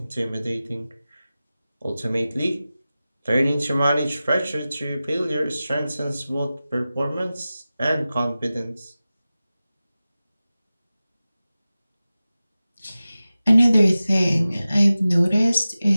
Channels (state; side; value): inverted; both; correlation -0.96